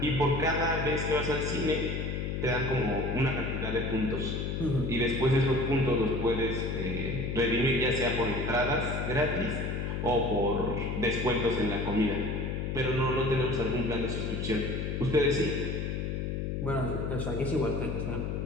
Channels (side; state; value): left; noise; hum, 2 dB below the sound